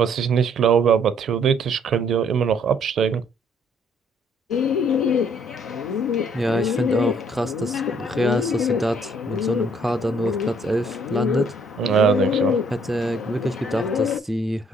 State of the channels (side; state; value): both; normal; correlation 0.64